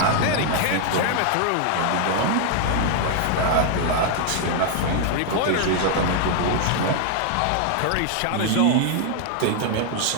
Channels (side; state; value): both; different; correlation 0.00